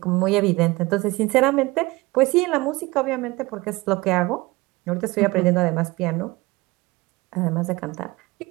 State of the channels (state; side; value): quieter; left; 21.9 dB